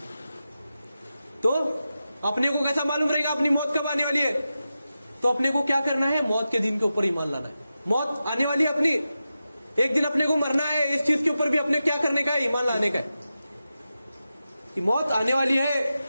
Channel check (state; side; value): inverted; both; correlation -0.91